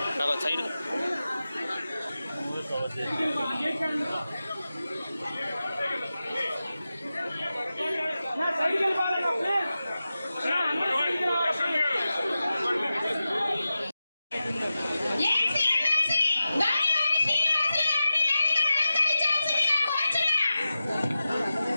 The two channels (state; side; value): inverted; both; correlation -0.93